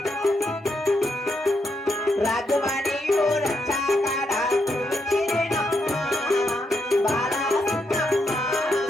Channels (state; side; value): normal; both; correlation 0.80